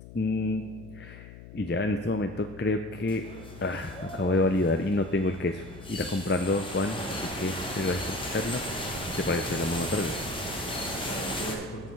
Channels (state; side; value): noise; left; hum, 16 dB below the sound